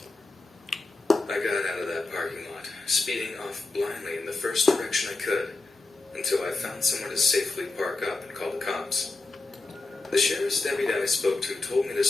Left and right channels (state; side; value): quieter; right; 3.4 dB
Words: I got out of that parking lot, speeding off blindly in the first direction I could, until I found somewhere to safely park up and call the cops. The sheriff's deputy I spoke to told me to